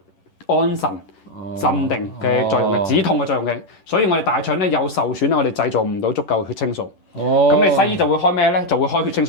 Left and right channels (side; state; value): right; late; 10 ms